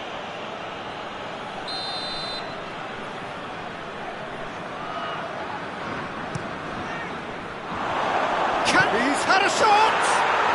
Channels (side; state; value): both; identical; correlation 1.00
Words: He's had a shot!